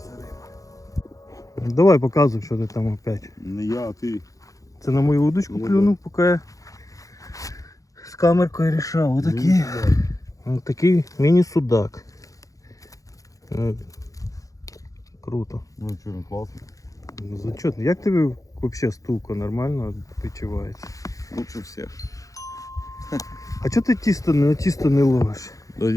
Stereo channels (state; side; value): late; right; 0.16 ms